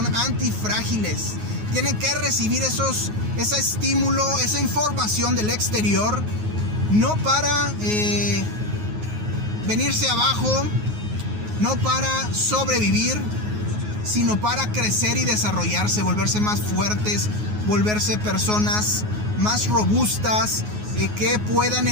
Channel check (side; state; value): left; late; 9.5 ms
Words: antifrágiles. Tienen que recibir ese estímulo, esa información del exterior, no para venirse abajo, no para sobrevivir, sino para crecer y desarrollarse, volverse más fuertes, volverse personas más robustas, que puedan